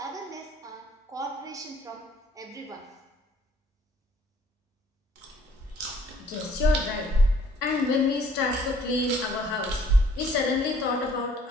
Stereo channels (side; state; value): both; normal; correlation 0.60